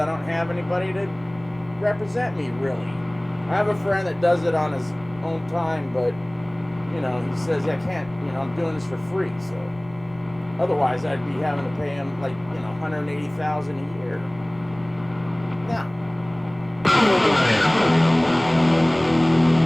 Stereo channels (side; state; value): left; noise; rumble, 22 dB below the sound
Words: don't have anybody to represent me, really. I have a friend that does it on his own time, but, he says, I can't, I'm doing this for free, so. Otherwise, I'd be having to pay him, $180,000 a year. Now,